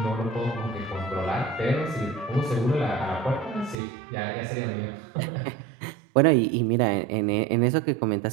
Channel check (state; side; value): drops out; left; at 3.8 s